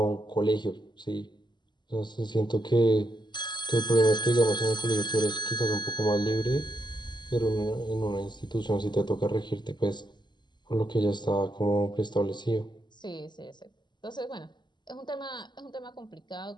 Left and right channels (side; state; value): right; late; 0.21 ms